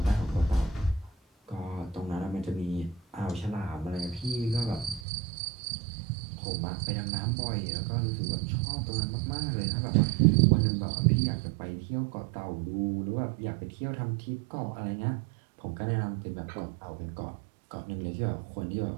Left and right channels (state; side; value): drops out; left; at 5.0 s